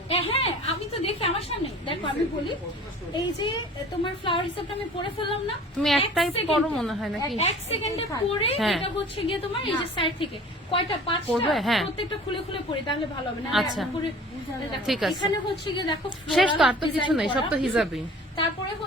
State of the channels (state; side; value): normal; both; correlation 0.45